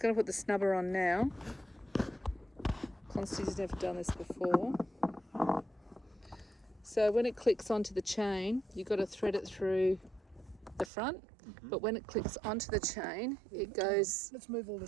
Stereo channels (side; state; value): left; drops out; at 10.9 s